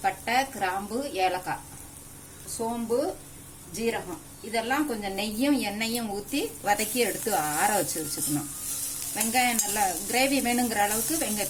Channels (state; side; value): identical; both; correlation 1.00